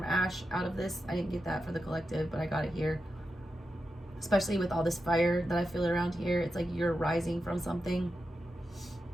Ash out of this. I didn't get that for the collective, but I got it here. Especially with all this fire that I feel around here. It's like you're rising from something.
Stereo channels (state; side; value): normal; both; correlation 0.89